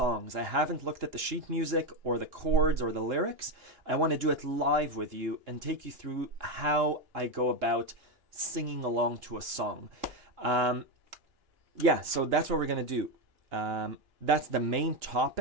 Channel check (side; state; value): left; late; 2.9 ms